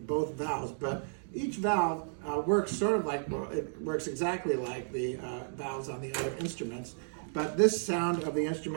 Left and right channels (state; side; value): silent; left; digital silence